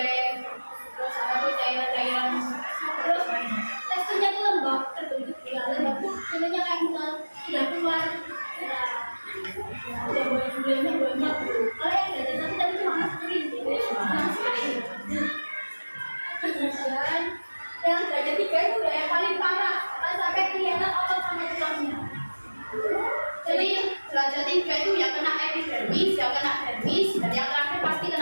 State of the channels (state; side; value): inverted; both; correlation -1.00